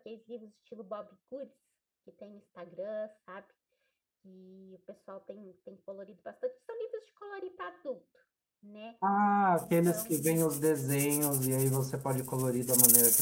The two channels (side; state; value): both; identical; correlation 1.00